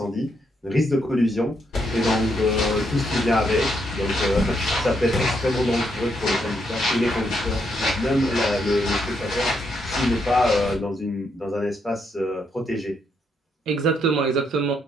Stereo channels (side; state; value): both; normal; correlation 0.77